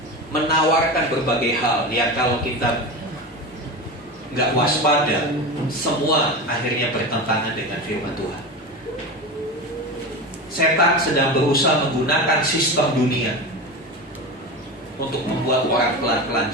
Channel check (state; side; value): normal; both; correlation 0.24